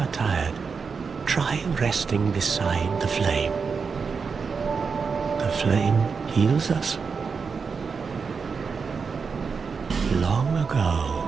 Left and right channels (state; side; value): quieter; left; 5.4 dB